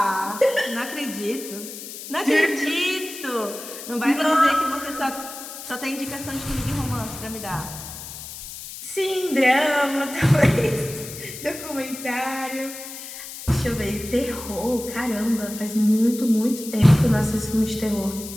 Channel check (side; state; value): left; noise; hiss, 11 dB below the sound